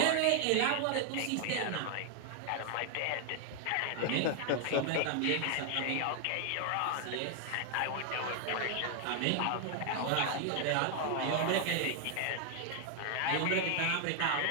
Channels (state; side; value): different; both; correlation 0.00